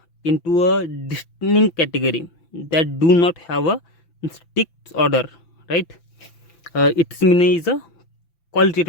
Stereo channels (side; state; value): right; late; 5.9 ms